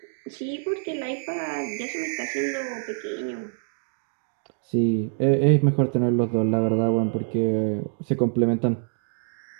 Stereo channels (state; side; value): silent; left; digital silence